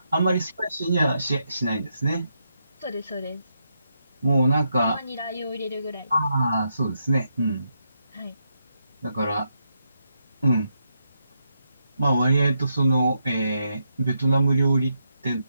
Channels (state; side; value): inverted; both; correlation -0.81